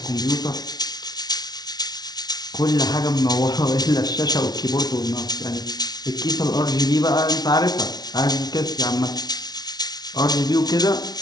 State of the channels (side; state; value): right; late; 0.19 ms